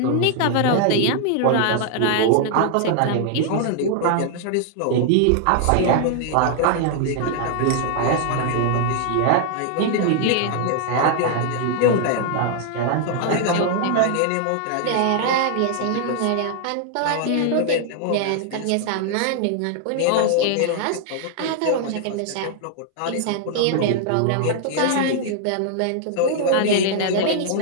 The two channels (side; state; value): both; different; correlation 0.00